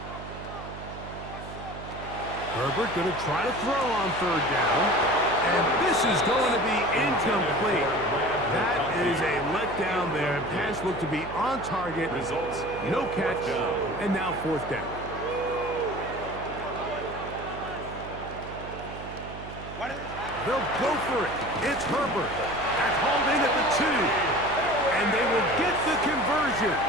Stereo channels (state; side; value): noise; right; hum, 12 dB below the sound